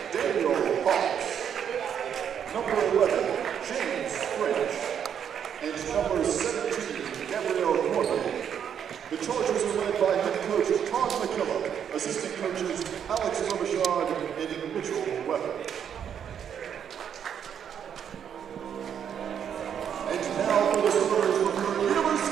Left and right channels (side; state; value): left; quieter; 8.5 dB